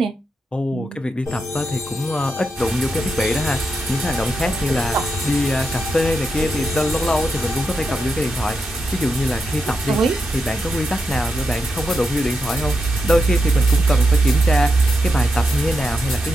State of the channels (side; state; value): both; normal; correlation 0.85